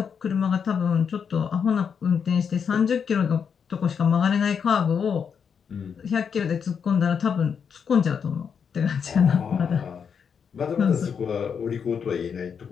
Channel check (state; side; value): quieter; right; 6.8 dB